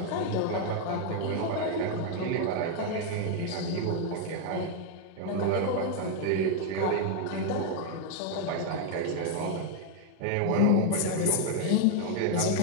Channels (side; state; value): both; different; correlation 0.00